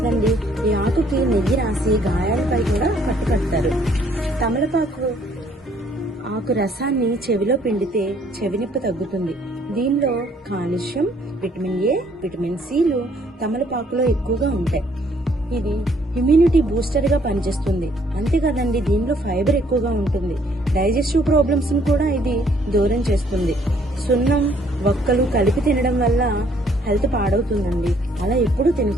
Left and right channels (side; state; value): both; normal; correlation 0.64